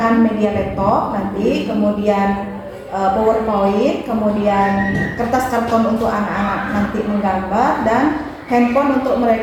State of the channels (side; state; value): both; identical; correlation 1.00